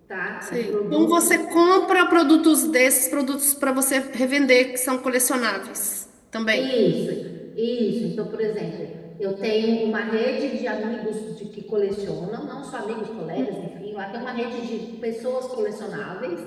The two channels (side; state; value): both; identical; correlation 1.00